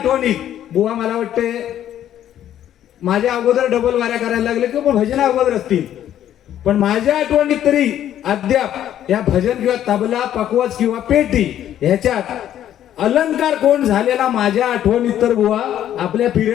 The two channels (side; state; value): right; quieter; 11.2 dB